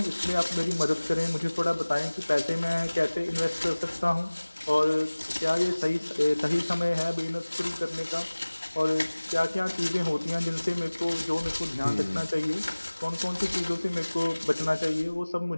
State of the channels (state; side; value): inverted; both; correlation -1.00